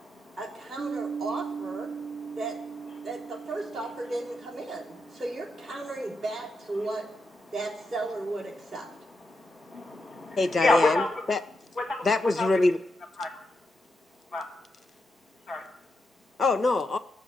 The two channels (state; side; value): normal; both; correlation 0.84